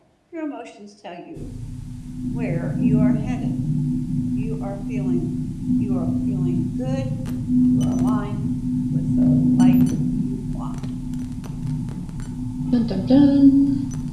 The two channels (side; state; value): both; identical; correlation 1.00